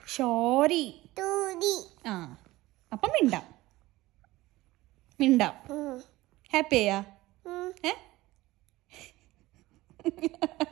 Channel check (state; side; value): quieter; left; 18.3 dB